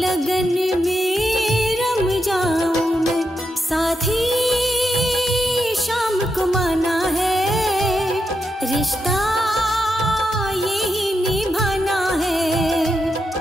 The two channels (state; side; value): normal; both; correlation 0.85